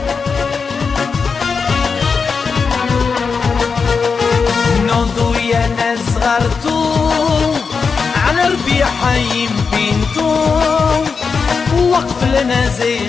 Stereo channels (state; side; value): quieter; right; 5.3 dB